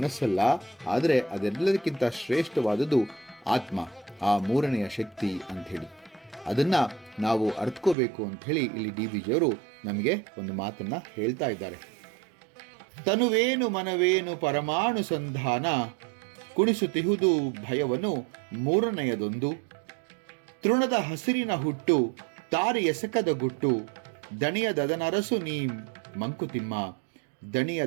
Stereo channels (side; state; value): left; drops out; at 8.0 s